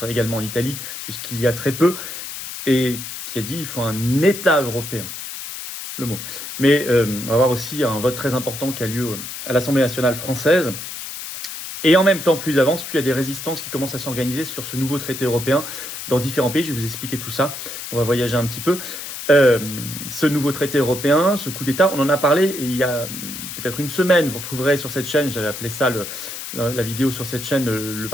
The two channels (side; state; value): left; noise; hiss, 8 dB below the sound